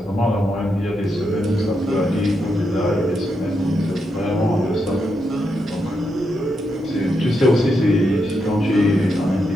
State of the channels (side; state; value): both; normal; correlation 0.83